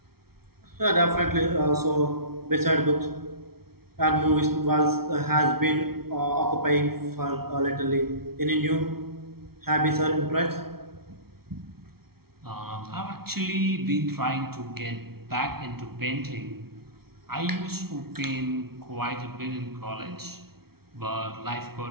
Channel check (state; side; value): late; left; 0.95 ms